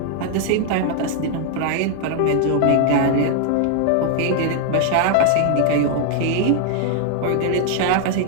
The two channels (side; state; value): both; different; correlation 0.00